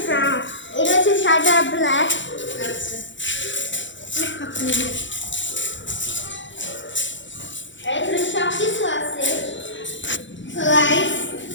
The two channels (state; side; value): late; right; 0.54 ms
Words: ব্রাউন, এটা হচ্ছে সাদা ব্ল্যাক। আচ্ছা এখানে সব কিছু আছে। So guys,